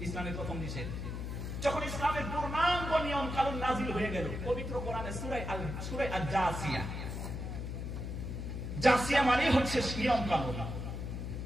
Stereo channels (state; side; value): noise; left; hum, 5 dB below the sound